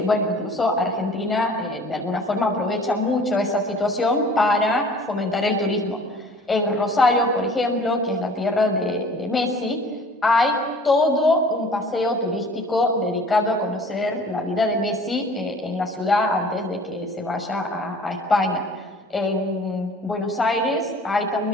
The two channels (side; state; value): both; normal; correlation 0.48